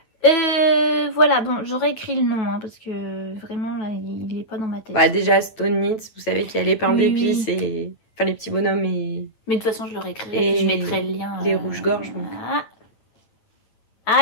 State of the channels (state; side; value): late; right; 8.9 ms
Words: Voilà, bon, j'aurais écrit le nom, hein, parce que vraiment, là, il est pas dans ma tête. Bah, déjà, Stone Knit, vous savez qu'il y a les pains d'épices et... Enfin, les petits bonhommes et... Mais de toute façon, je l'aurais écrit, et je mettrai le lien. Les rouges-gorges, donc.